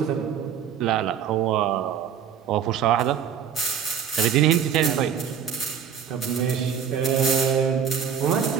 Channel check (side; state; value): left; quieter; 8.1 dB